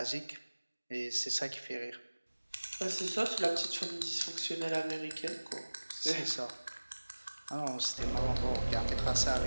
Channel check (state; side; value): inverted; both; correlation -1.00